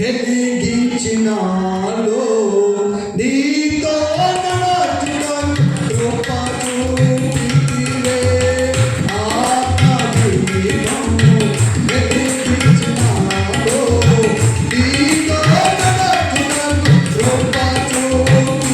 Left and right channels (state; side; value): identical; both; correlation 1.00